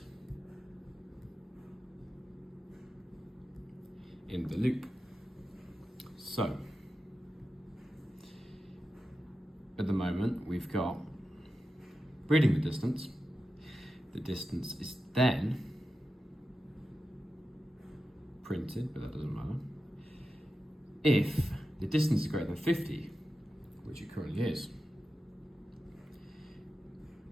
in the loop. So at the moment we've got reading the distance. The distance is then printed, but that doesn't matter. If the distance is greater than 50, which it currently is,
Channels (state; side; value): normal; both; correlation 0.91